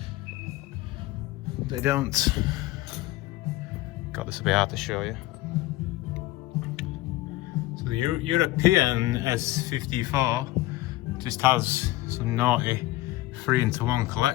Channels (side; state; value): right; quieter; 17.3 dB